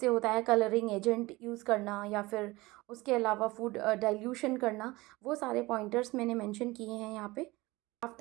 होता है, कलरिंग एजेंट यूज़ करना या फिर उसके अलावा फूड डाइल्यूशन करना, वो सारे पॉइंटर्स मैंने मेंशन किए हैं यहाँ पे।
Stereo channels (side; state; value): left; quieter; 21.1 dB